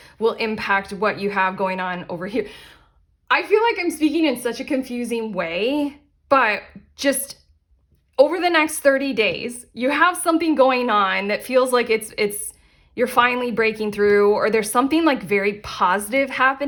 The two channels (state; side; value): identical; both; correlation 1.00